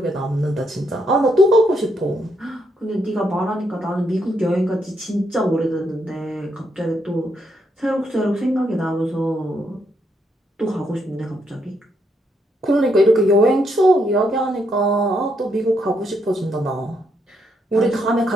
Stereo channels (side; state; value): both; normal; correlation 0.77